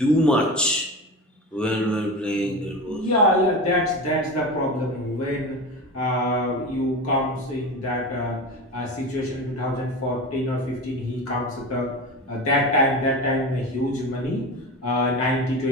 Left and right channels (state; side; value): normal; both; correlation 0.27